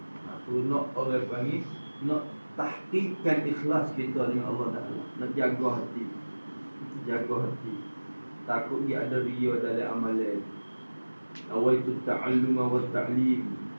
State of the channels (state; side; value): inverted; both; correlation -1.00